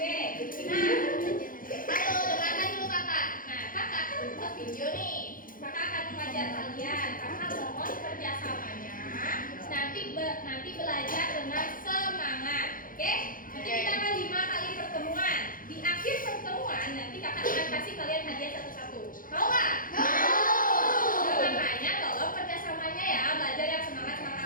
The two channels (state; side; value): late; right; 0.40 ms